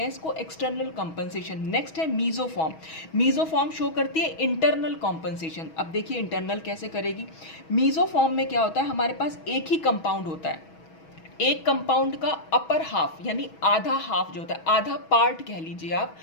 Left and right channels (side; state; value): right; late; 6.2 ms